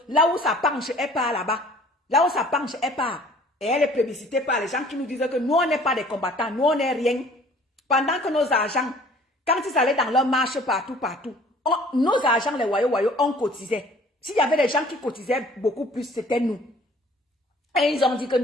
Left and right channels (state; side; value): normal; both; correlation 0.53